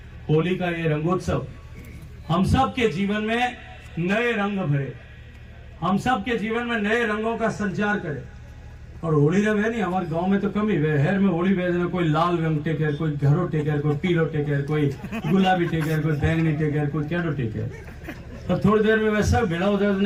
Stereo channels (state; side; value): identical; both; correlation 1.00